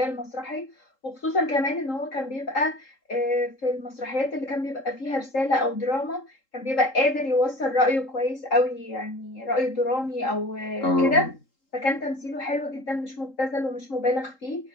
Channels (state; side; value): late; right; 3.8 ms